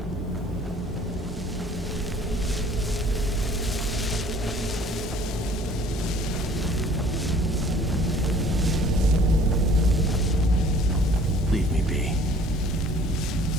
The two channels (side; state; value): both; normal; correlation 0.53